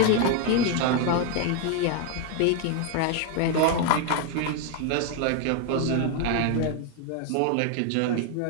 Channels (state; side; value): different; both; correlation 0.00